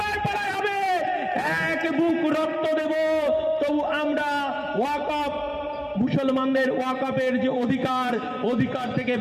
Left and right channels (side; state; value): both; identical; correlation 1.00